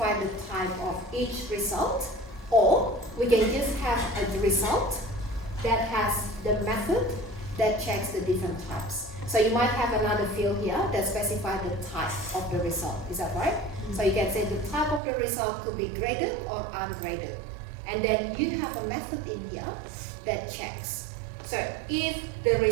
the type of each result, or we can just have a result that has the method that checks the different types. So you might have another field here that specifies the type of the result. Is that right? So you can say the type of the result could be graded or ungraded. And then you have a method in here that checks. So if the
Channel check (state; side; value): drops out; left; at 15.0 s